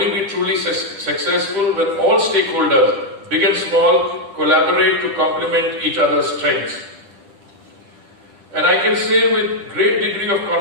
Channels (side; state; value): left; late; 10 ms